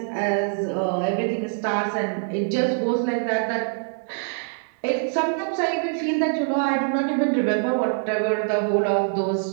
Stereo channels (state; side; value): silent; left; 61 dB below the other